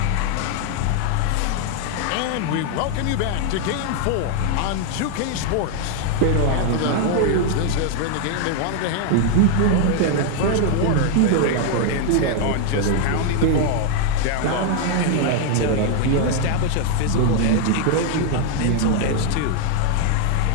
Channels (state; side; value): different; both; correlation 0.00